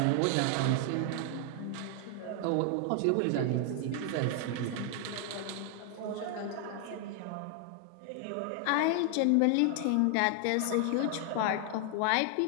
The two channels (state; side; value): different; both; correlation 0.00